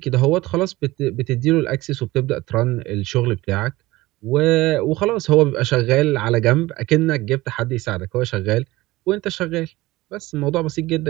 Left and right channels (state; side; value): quieter; left; 19.1 dB